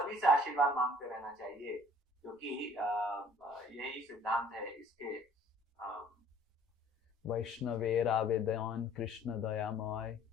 से आशीर्वाद मांगते रहना चाहिए, क्योंकि यही सिद्धांत है इसके। वैष्णवेर आवेदन कृष्ण दयामय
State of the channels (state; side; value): normal; both; correlation 0.54